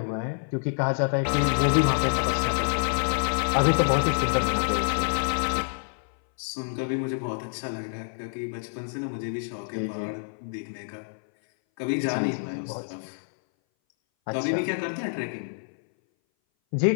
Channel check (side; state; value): right; silent; 59 dB below the other